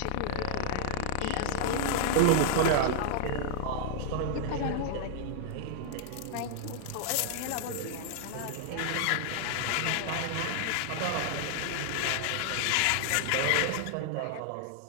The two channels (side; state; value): both; different; correlation -0.01